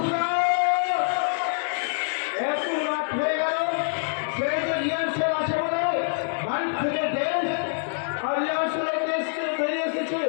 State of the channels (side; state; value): right; silent; digital silence